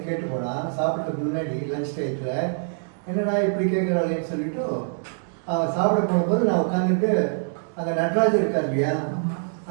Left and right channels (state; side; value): silent; left; digital silence